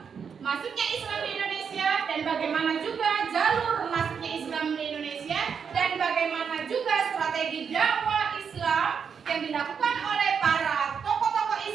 masuknya Islam di Indonesia dan bagaimana juga jalur masuknya Islam di Indonesia dan bagaimana juga strategi dakwah Islam yang dilakukan oleh para tokoh-tokoh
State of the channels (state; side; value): quieter; left; 6.6 dB